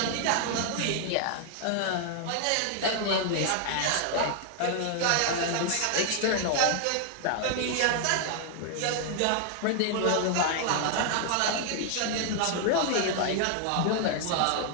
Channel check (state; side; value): different; both; correlation 0.00